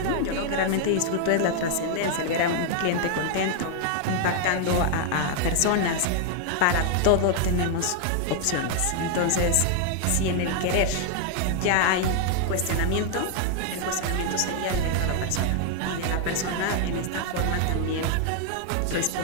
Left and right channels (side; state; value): both; different; correlation 0.00